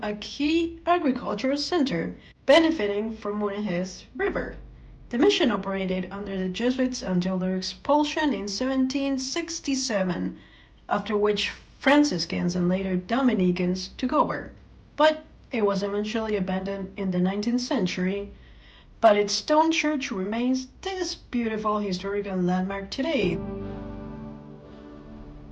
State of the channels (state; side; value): identical; both; correlation 1.00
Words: a key agricultural center, benefiting from Mulegé's river. The mission operated under the Jesuits until their expulsion in 1767, after which Franciscans and later Dominicans took over. But it was eventually abandoned in the 19th century, but its stone church remains this beautiful historical landmark today.